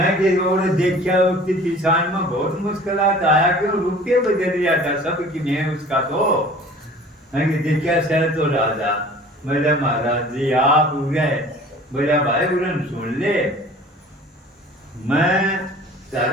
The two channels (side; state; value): both; normal; correlation 0.46